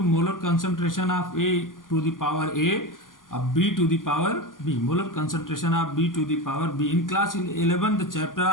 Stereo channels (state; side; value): late; right; 0.89 ms